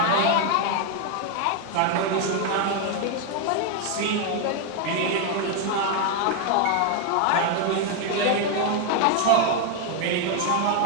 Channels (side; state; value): both; different; correlation 0.00